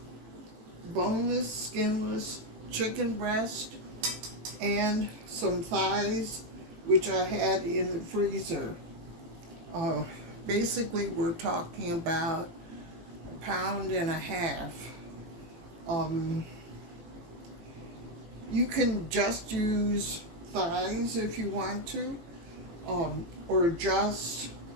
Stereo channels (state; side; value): late; left; 18 ms